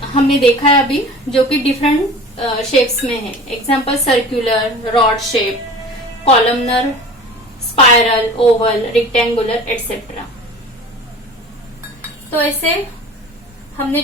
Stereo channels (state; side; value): normal; both; correlation 0.40